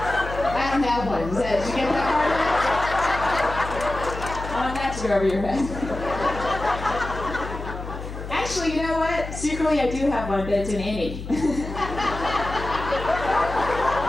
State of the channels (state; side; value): noise; left; hum, 9 dB below the sound